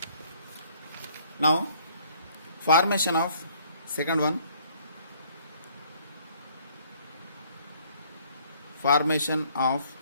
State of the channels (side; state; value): both; inverted; correlation -0.60